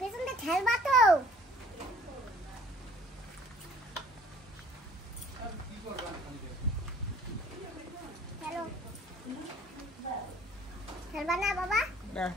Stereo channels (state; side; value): normal; both; correlation 0.54